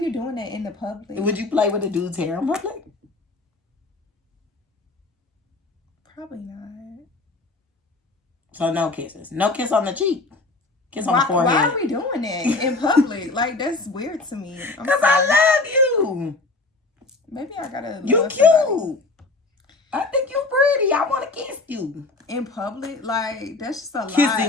doing that in the public? Would you play with a dude's hair in public? Probably not. So no kisses. No kiss on the cheek. Kiss on the forehead. Why are we doing that in public? Like, that's weird to me. Because I love you. Maybe I gotta. You cute. Somebody. I think you pretty. I want to kiss you. In public? Like, that's just a Kissing lie.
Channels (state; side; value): quieter; right; 3.4 dB